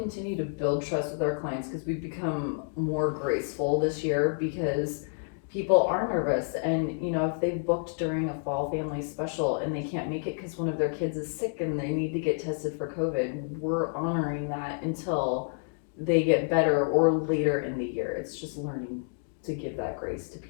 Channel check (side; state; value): right; silent; digital silence